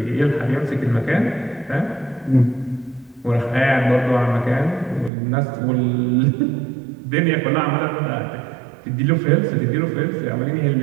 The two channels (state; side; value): drops out; left; at 5.1 s